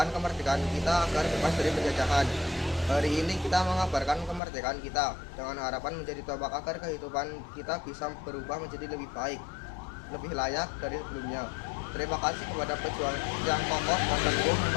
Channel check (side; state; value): right; drops out; at 4.4 s